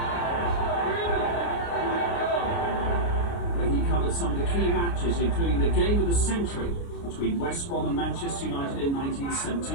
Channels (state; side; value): late; right; 29 ms